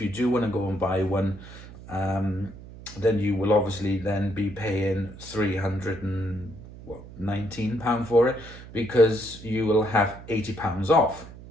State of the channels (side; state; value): right; noise; hum, 16 dB below the sound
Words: you do want to go and buy one, then you will obviously then be paying £319 for it because you will have £80 off.